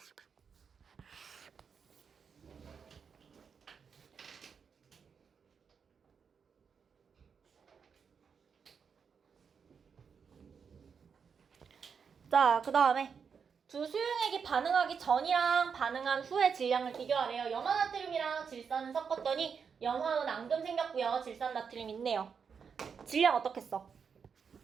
자, 그 다음에 두 수용액이 반응하기 전이랑 반응한 후의 질량을 비교하래요. 염화나트륨이랑 질산을 섞었더니 염화은 앙금 생겼고요. 질산나트륨 있네요. 질량 어떻게 써?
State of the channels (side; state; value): left; quieter; 6.3 dB